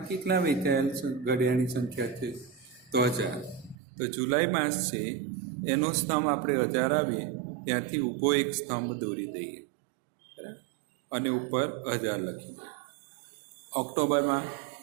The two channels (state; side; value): drops out; left; at 3.8 s